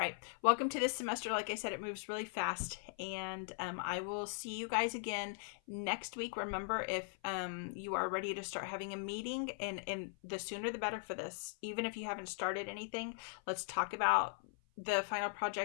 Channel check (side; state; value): right; silent; 51 dB below the other